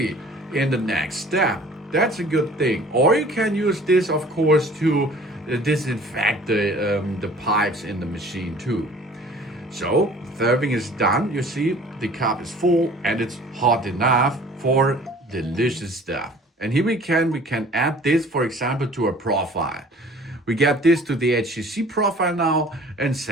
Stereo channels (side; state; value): both; normal; correlation 0.49